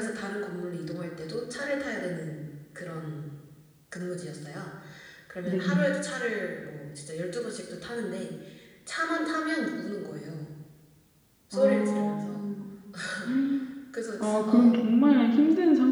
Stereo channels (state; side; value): identical; both; correlation 1.00